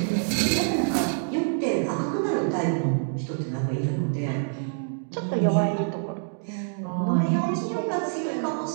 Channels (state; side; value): silent; left; digital silence